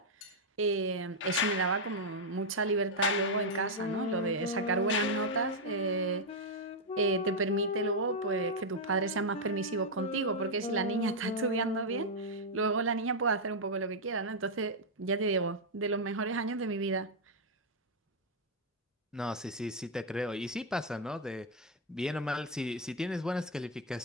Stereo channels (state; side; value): normal; both; correlation -0.02